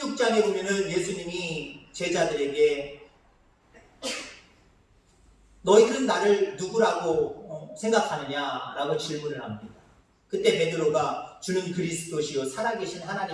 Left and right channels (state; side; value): identical; both; correlation 1.00